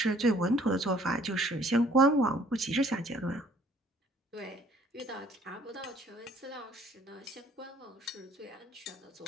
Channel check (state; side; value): normal; both; correlation 0.58